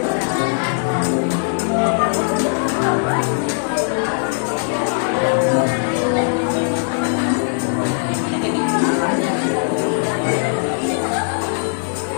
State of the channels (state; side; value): silent; right; 66 dB below the other